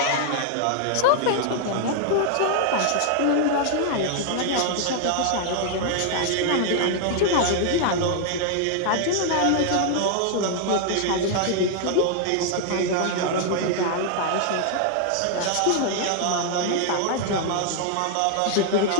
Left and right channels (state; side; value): different; both; correlation 0.00